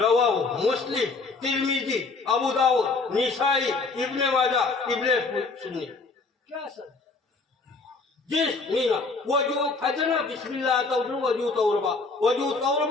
मुस्लिम तिर्मिजी अबू दाऊद निसाई इब्ने माजा इब्ने सुन्नी क्या सर जिस मीना वजू फजना बिस्मिल्लाह तौरु वजू तौरबा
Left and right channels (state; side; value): quieter; right; 4.0 dB